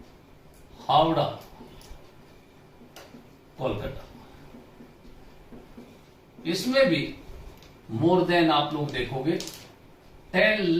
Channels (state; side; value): identical; both; correlation 1.00